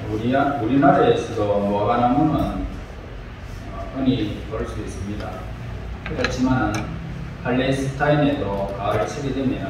우리나라에서도 무화과나무는 흔히 볼 수 있습니다. 그렇지만 팔레스타인에도 가을철이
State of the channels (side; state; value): both; identical; correlation 1.00